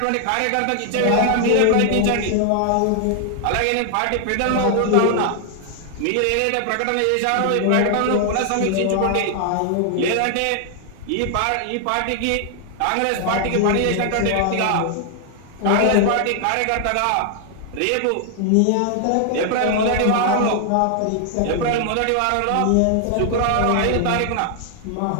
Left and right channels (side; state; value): both; different; correlation 0.00